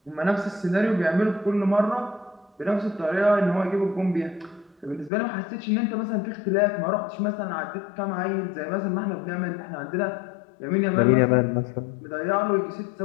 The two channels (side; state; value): right; drops out; at 5.1 s